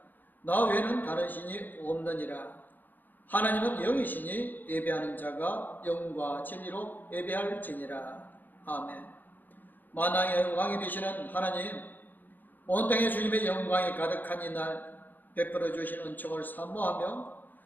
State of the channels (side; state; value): right; late; 0.086 ms